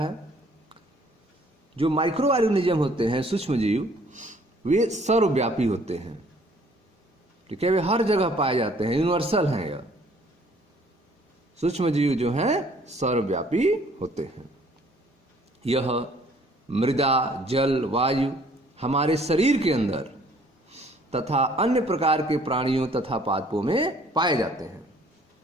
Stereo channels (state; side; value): normal; both; correlation 0.58